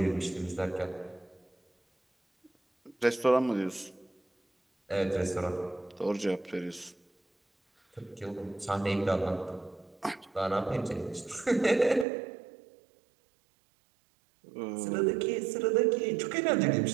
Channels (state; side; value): drops out; left; at 12.1 s